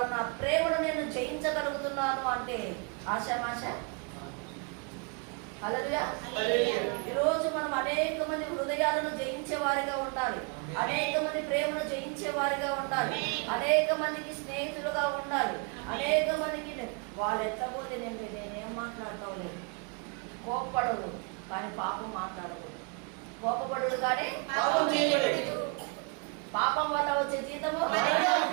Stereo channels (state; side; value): quieter; left; 36.3 dB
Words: నా ప్రేమను నేను జయించగలుగుతున్నాను అంటే ఆశామాశ? హల్లెలూయా. ఈరోజు మనం అనేక మంది హృదయాలను జయించే వారిగా ఉండాలి, అనేక మంది ప్రేమను జయించే వారిగా ఉండాలి, అనేక మందికి స్నేహితులుగా ఉండాలి, అనేక మందికి వాళ్ళు ఎత్తపోతే నేనేం మాట్లాడతావు లేదు. కోపపడదు కానీ పాపం మాట్లాడకూడదు, కోపపడదు కానీ పాపం వల్ల వచ్చే జీతము